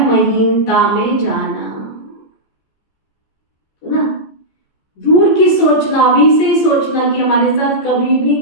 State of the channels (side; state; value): right; late; 15 ms